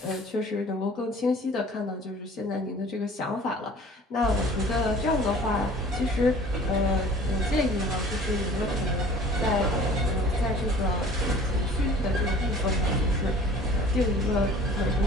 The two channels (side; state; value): both; normal; correlation 0.47